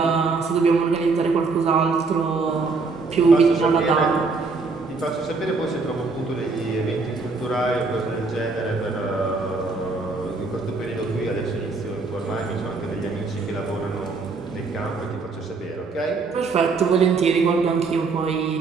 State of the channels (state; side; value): quieter; left; 4.2 dB